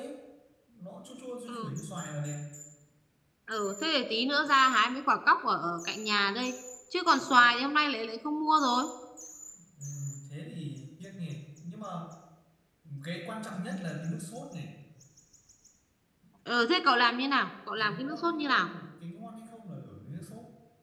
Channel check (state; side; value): identical; both; correlation 1.00